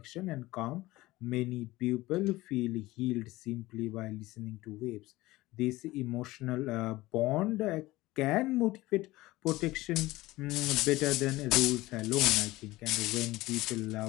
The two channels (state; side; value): quieter; right; 18.8 dB